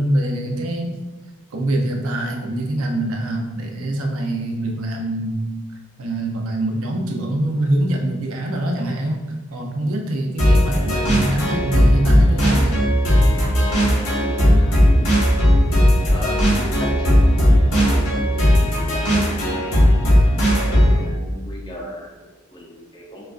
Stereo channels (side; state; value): both; normal; correlation 0.88